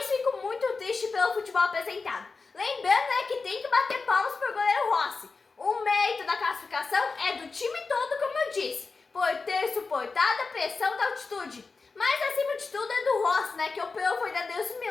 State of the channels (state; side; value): quieter; right; 4.3 dB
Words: fico muito triste pelo futebol apresentado. Lembrando que tem que bater palmas para o goleiro Rossi. O mérito da classificação é do time todo, como eu disse, por ter suportado a pressão da altitude. Mas acima de tudo é do Rossi, que operou verdadeiros